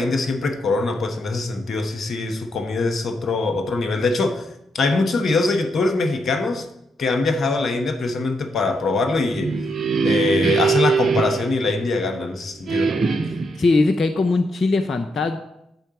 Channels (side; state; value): both; normal; correlation 0.80